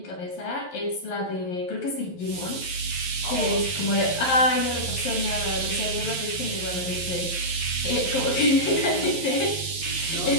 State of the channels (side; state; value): right; late; 11 ms